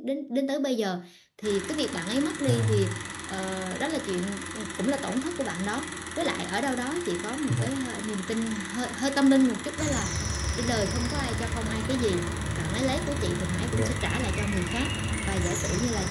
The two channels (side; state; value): both; identical; correlation 1.00